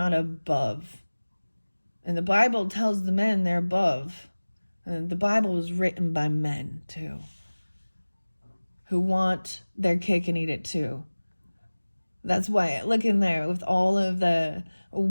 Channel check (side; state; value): both; inverted; correlation -1.00